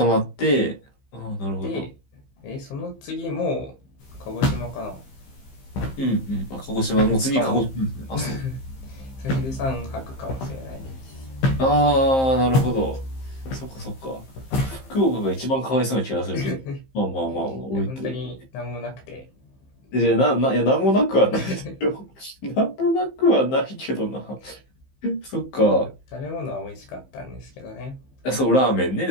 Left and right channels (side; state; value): right; late; 15 ms